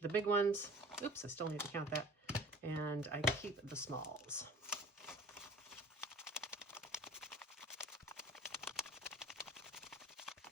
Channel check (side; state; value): both; normal; correlation 0.44